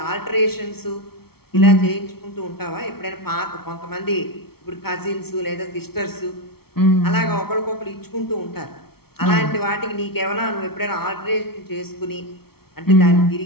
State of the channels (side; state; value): right; late; 0.95 ms